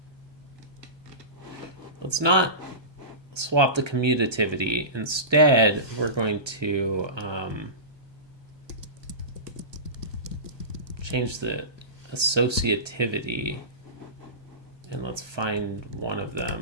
let's not swap the commutativity. Instead, we're going to change the associativity, and let's find one of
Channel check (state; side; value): late; left; 1.3 ms